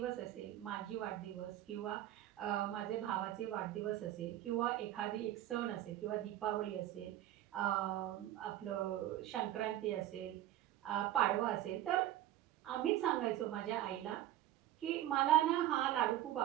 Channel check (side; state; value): left; quieter; 13.3 dB